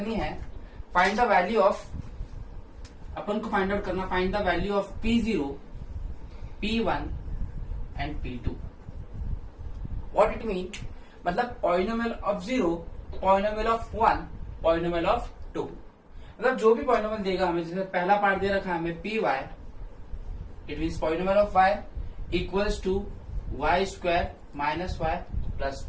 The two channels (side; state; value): both; identical; correlation 1.00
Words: है। फाइंड द वैल्यू ऑफ, अपन को फाइंड आउट करना, find the value of P0, P1 and P2। What it mean, मतलब polynomial of 0, polynomial of 1, polynomial of 2। मतलब जो भी पॉलिनोमियल देगा हमें, जैसे पहला पार्ट दे रखा है हमें p y, it means polynomial of y equals to y square minus y plus